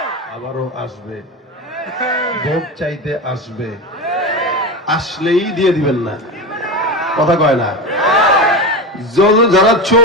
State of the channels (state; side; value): normal; both; correlation 0.21